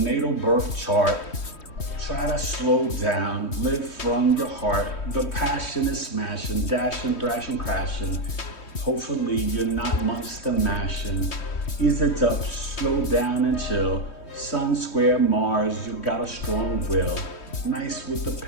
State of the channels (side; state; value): right; late; 3.2 ms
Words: birth chart. Try to slow down, live from your heart. The passion is smashing, dashing, thrashing, crashing. Hopefully you're not monster mashing. Ease it up, slow down and chill. Sun, square, Mars, you got a strong will. Nice with the